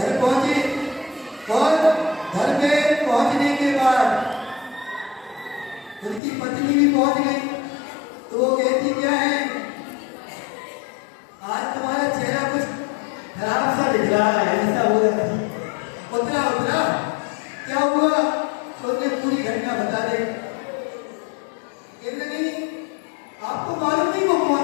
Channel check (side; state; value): right; drops out; at 6.2 s